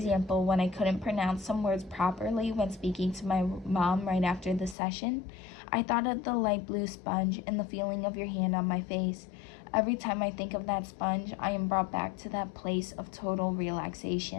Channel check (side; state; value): right; drops out; at 4.8 s